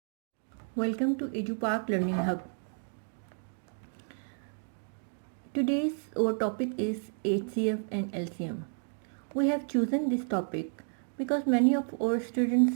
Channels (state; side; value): silent; left; 57 dB below the other